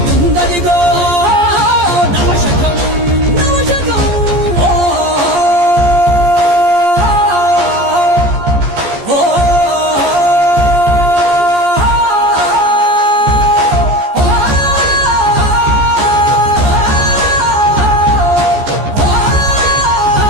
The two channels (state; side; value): late; left; 14 ms